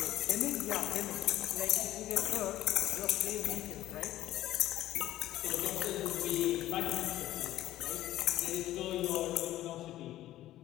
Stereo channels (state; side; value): quieter; right; 14.2 dB